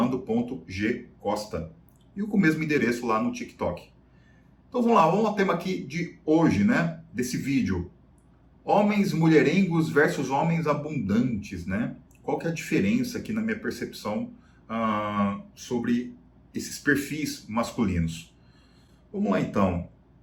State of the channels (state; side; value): identical; both; correlation 1.00